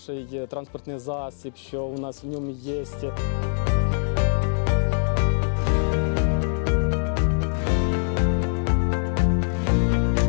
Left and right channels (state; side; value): silent; right; digital silence